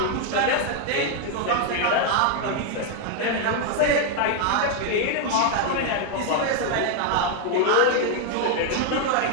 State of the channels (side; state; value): both; different; correlation 0.00